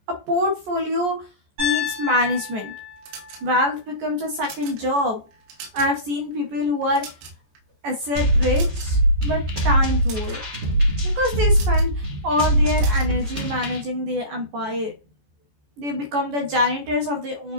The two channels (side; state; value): left; late; 14 ms